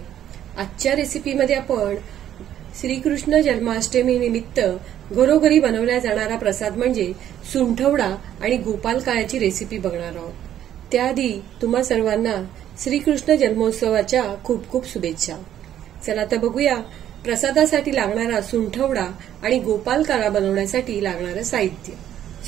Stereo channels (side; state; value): left; quieter; 11.0 dB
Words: आजच्या रेसिपीमध्ये आपण श्रीकृष्ण जन्माष्टमी निमित्त घरोघरी बनवल्या जाणारा प्रसाद म्हणजे सुंठवडा आणि गोपाल काळ्याची रेसिपी बघणार आहोत। त्याआधी तुम्हा सर्वांना श्रीकृष्ण जन्मोत्सवाच्या खूप खूप शुभेच्छा। चला तर बघूया प्रसादासाठी लागणारा सुंठवडा आणि गोपाल काळा बनवण्यासाठी लागणारं साहित्य।